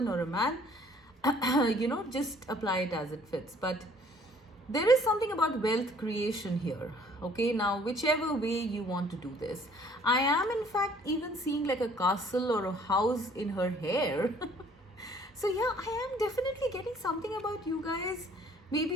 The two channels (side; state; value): both; normal; correlation 0.57